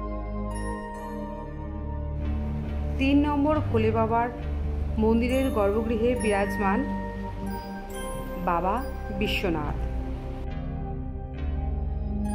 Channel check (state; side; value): identical; both; correlation 1.00